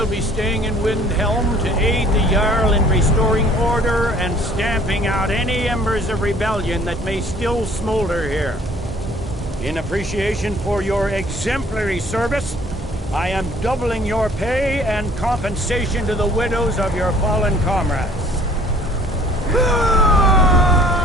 be staying in Windhelm to aid the Jarl in restoring order and stamping out any embers of rebellion that may still smolder here. In appreciation for your exemplary service, I am doubling your pay and compensation to the widows of your fallen comrades.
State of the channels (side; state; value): both; normal; correlation 0.54